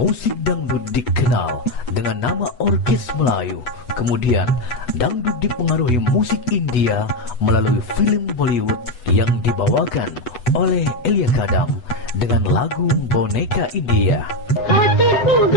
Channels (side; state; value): right; late; 8.2 ms